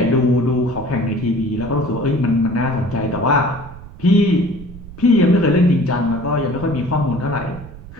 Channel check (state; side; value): noise; right; rumble, 16 dB below the sound